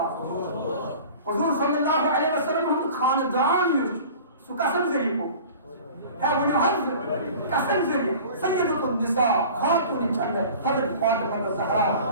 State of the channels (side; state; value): both; inverted; correlation -0.42